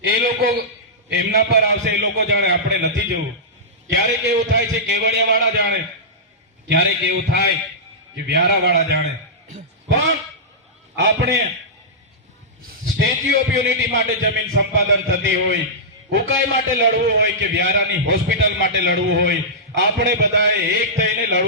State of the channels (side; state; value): both; normal; correlation -0.14